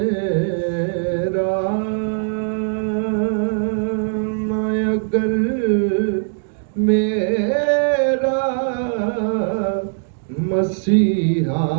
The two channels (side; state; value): left; silent; 66 dB below the other